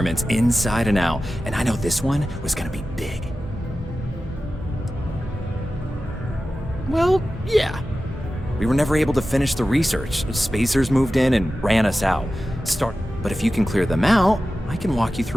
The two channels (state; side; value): normal; both; correlation 0.94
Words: inside and out. And I know this one was gonna be big. Well, yeah. We were never able to finish the research. Spacers moved in and ran us out. But if you can clear them out, I can walk you